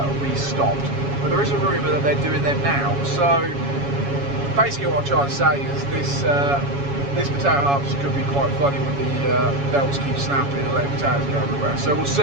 we stopped. But there is a rumour that they're doing them now. So basically what I'm trying to say is this potato harvest could be quite funny when the belts keep snapping and letting potatoes go everywhere. So we'll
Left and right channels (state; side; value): late; left; 7.2 ms